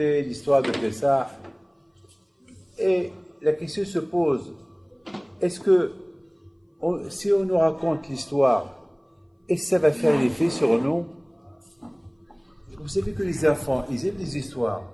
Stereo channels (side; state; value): both; identical; correlation 1.00